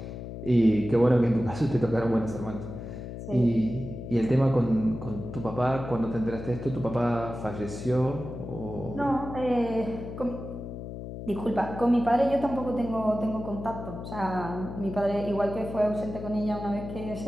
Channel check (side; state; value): left; noise; hum, 9 dB below the sound